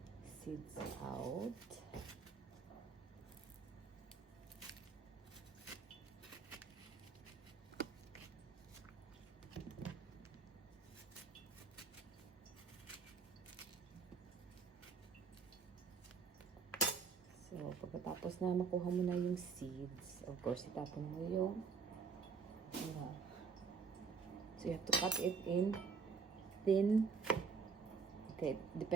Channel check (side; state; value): left; quieter; 5.4 dB